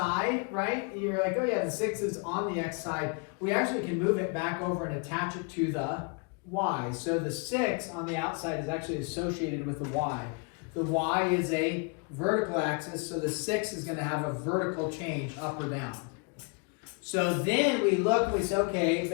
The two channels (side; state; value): right; quieter; 33.6 dB